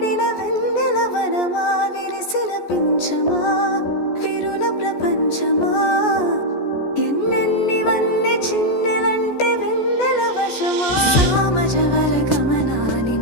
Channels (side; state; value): right; late; 14 ms